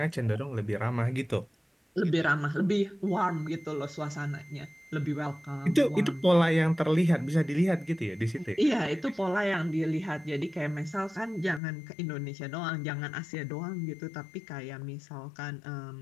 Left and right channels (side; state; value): right; drops out; at 11.6 s